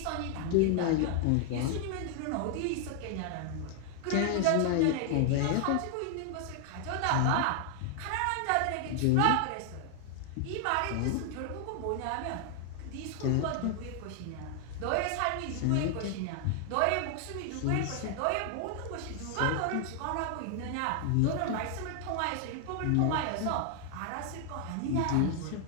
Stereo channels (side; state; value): both; different; correlation 0.00